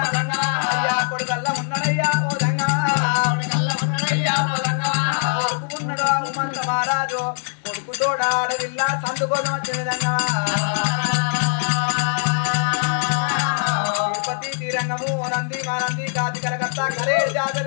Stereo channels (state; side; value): silent; right; 63 dB below the other